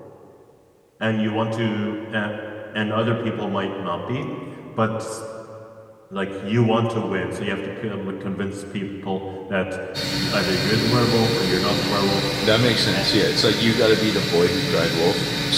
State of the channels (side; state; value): both; identical; correlation 1.00